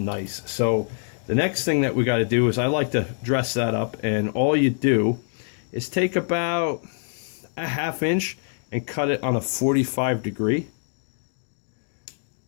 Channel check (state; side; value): silent; right; digital silence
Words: So the next thing that we got to do is I like to dress that up, and all you do is take about a 1/2 inch and cut it on a 45 degree.